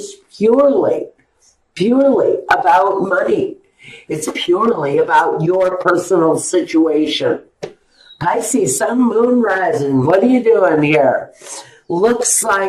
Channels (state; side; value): identical; both; correlation 1.00